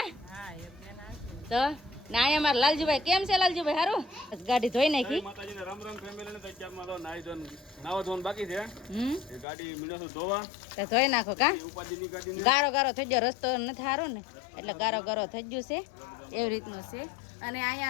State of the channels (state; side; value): drops out; right; at 9.5 s